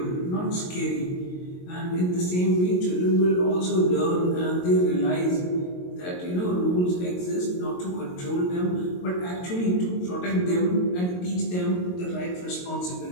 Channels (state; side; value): late; right; 22 ms